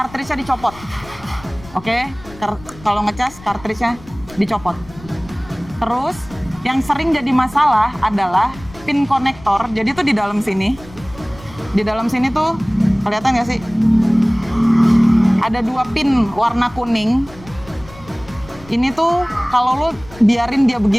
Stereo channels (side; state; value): left; noise; rumble, 20 dB below the sound